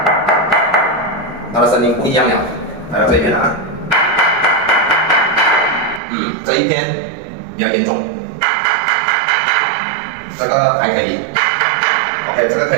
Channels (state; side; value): drops out; left; at 6.0 s